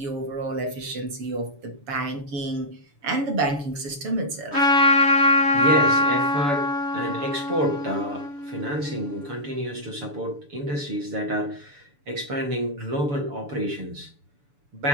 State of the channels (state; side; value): late; left; 6.9 ms